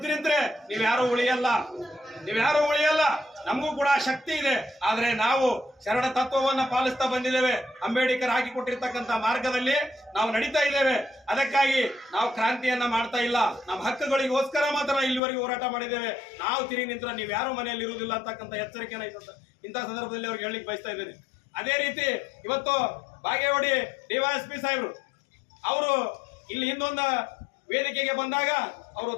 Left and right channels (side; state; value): right; drops out; at 15.2 s